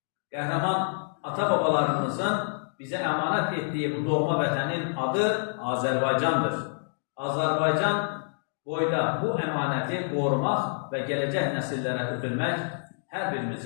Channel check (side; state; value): right; silent; digital silence